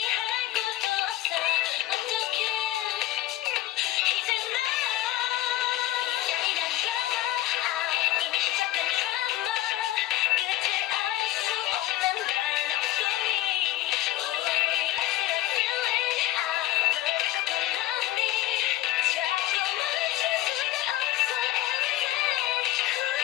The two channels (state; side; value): quieter; right; 14.9 dB